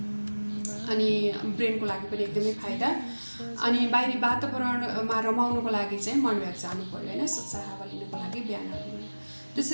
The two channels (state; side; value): inverted; both; correlation -1.00